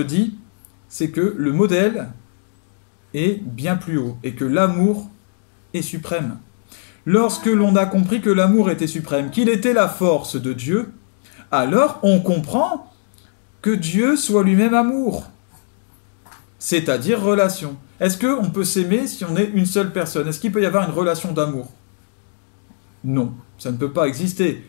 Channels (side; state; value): right; silent; digital silence